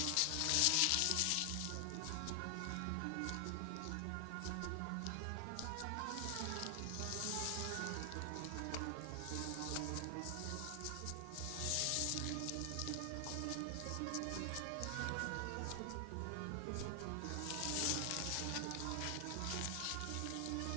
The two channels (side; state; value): both; different; correlation 0.00